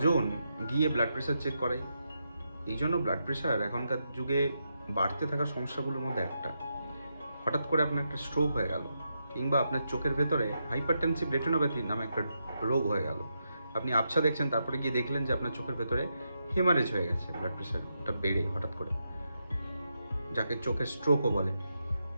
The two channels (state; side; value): inverted; both; correlation -0.84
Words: গিয়ে ব্লাড প্রেশার চেক করাই? এই জন্য ব্লাড প্রেশার এখনকার যুগে বাড়তে থাকা সমস্যাগুলোর মধ্যে একটা। হঠাৎ করে আপনার একটা স্ট্রোক হয়ে গেল, কিংবা আপনার চোখের ভেতরে হাইপারটেনসিভ রেটিনোপ্যাথি নামে একটা রোগ হয়ে গেল। আপনি আবছা দেখছেন, তারপরে গিয়ে দেখলেন যে আপনার চোখের ভেতরে হেমারেজ হয়ে গেছে, ব্লাড প্রেশারটা বেড়ে হঠাৎ করে, যাকে চোখের স্ট্রোকও বলে।